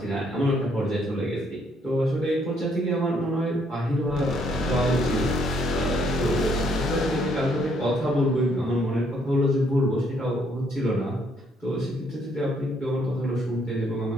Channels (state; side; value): normal; both; correlation 0.69